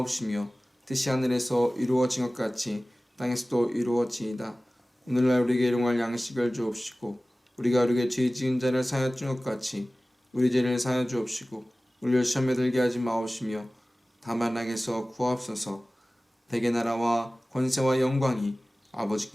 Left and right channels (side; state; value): both; normal; correlation 0.97